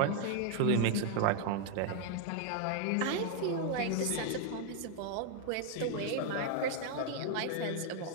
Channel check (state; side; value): different; both; correlation 0.01